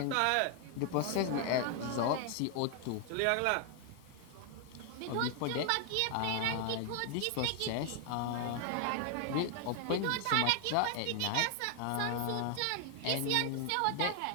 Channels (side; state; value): both; different; correlation 0.00